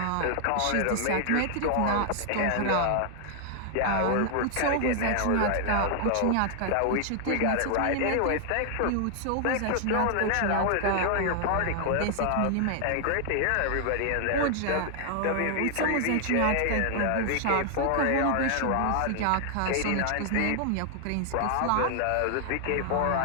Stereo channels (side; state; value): both; different; correlation 0.00